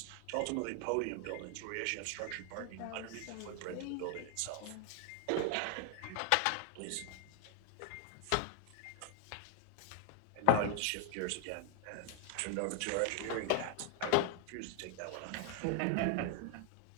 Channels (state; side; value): different; both; correlation 0.00